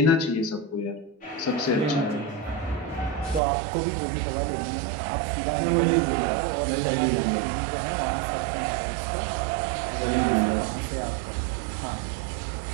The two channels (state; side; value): drops out; left; at 3.4 s